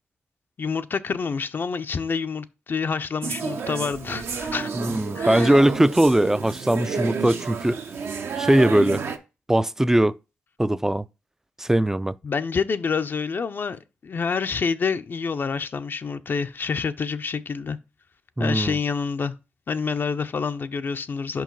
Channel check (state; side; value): normal; both; correlation 0.87